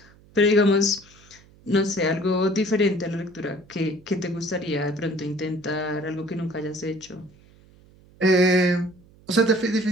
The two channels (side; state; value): right; noise; hum, 27 dB below the sound